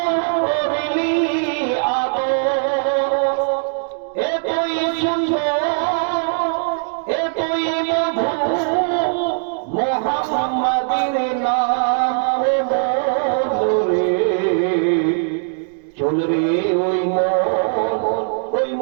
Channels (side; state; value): left; silent; digital silence